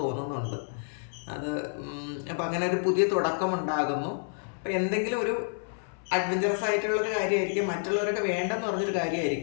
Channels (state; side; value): silent; right; 58 dB below the other